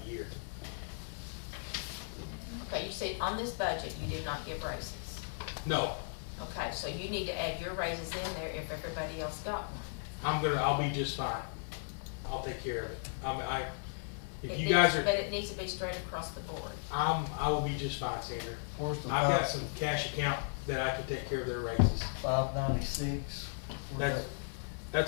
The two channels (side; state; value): right; silent; digital silence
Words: the year. Okay, you said on this budget, you did not give raises. No, Okay, so you need to add your raises in there if everybody else got one. I'll be just fine. I'll take care of it. If It you needs- guys are, But it needs to be straight across the board. I will be just fine, Sandra. Where's the I've got some cash account that I can take care of their raises. 596?